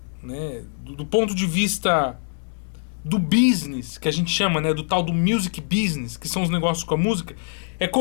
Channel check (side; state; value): right; silent; digital silence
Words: né, do ponto de vista do business, que a gente chama, né, do tal do music business, que são os negócios com a música,